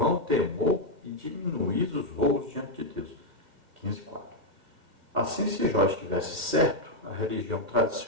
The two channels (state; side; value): late; left; 1.6 ms